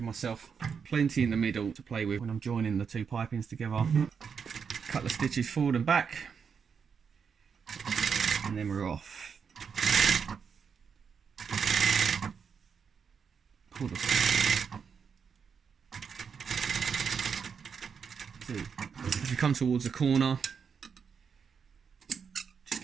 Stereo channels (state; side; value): quieter; left; 6.4 dB